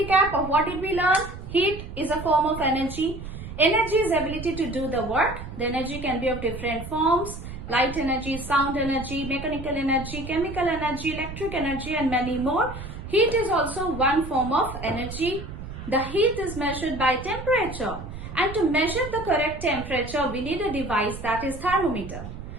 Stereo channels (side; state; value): right; noise; rumble, 10 dB below the sound